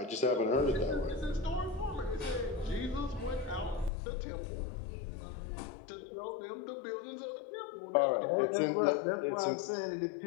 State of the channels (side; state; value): right; drops out; at 3.9 s